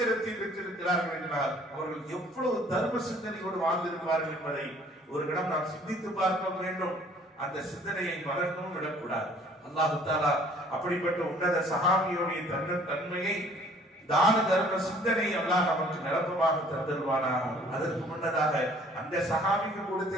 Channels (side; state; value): both; normal; correlation 0.55